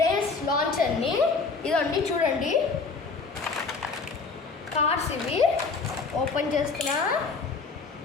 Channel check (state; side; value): quieter; right; 4.5 dB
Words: లాంచర్ని. ఇదండి చూడండి, కార్స్ ఇవి ఓపెన్ చేస్తున్నా.